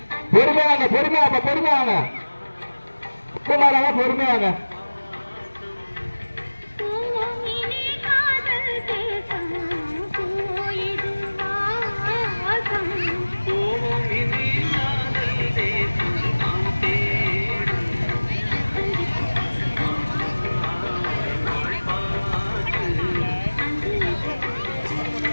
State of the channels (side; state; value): both; inverted; correlation -1.00